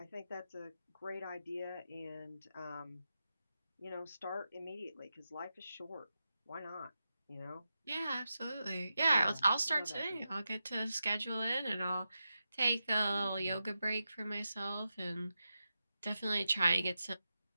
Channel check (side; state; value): both; inverted; correlation -0.89